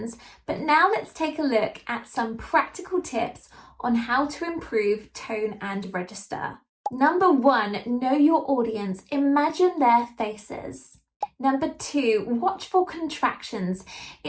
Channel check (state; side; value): identical; both; correlation 1.00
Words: but now let's take a look at some practical tips on how to improve tone and register. Number 1, know your audience. Imagine their faces. Number 2, watch for contractions.